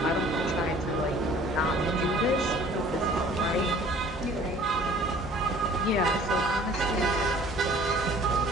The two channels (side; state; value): both; normal; correlation 0.51